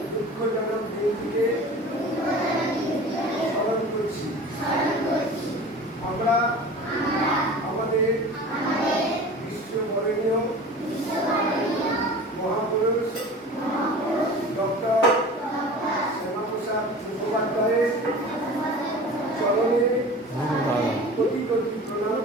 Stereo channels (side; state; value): both; normal; correlation 0.38